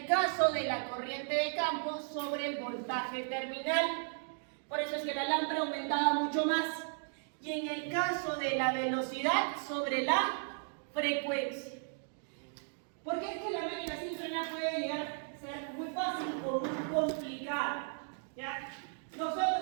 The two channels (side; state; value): left; silent; 54 dB below the other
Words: caso de la corriente de campo, sobre el voltaje terminal. Por eso es que la lámpara aumentaba mucho más. Y en el caso de la velocidad, sobre la frecuencia. Porque es que la máquina síncrona puede llegar a ser muy fácil o muy complicada, ¿ya? Nosotros